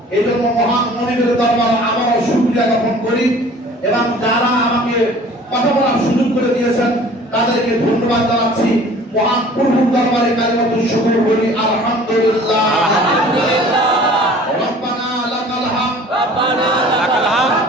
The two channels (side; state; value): both; normal; correlation 0.48